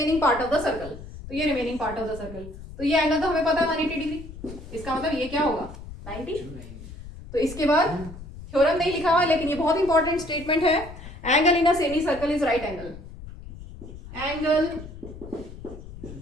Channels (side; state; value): left; noise; rumble, 14 dB below the sound